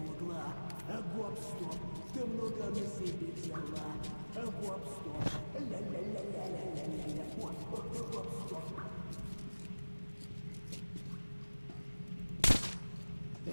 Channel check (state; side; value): inverted; both; correlation -1.00